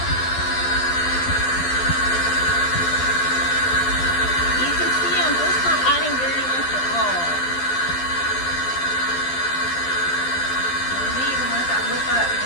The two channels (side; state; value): right; late; 12 ms